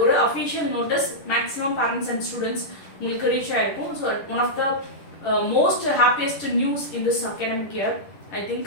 ஒரு official notice maximum parents and students உங்களுக்கு reach ஆயிருக்கும். So, one of the most happiest news in this academic year, I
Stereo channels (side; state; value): right; late; 10 ms